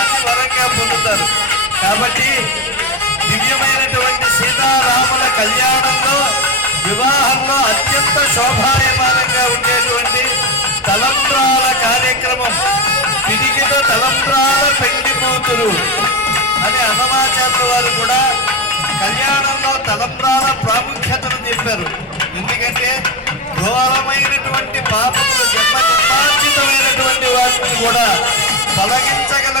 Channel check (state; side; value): normal; both; correlation 0.17